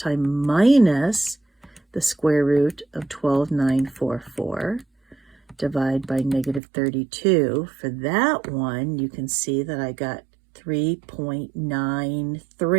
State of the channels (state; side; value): drops out; left; at 6.6 s